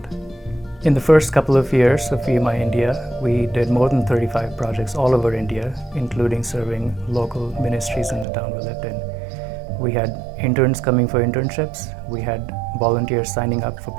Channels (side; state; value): left; drops out; at 8.2 s